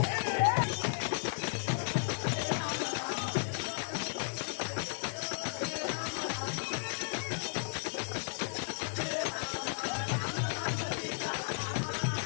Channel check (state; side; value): silent; right; digital silence